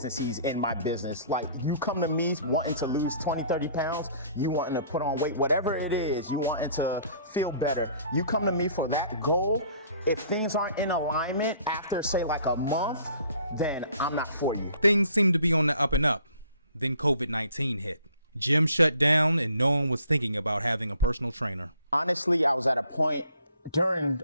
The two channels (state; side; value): inverted; both; correlation -0.56